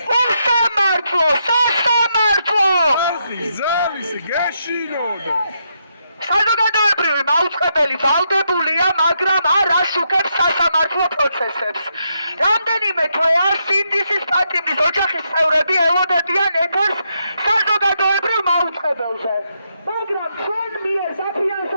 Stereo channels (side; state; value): both; inverted; correlation -0.80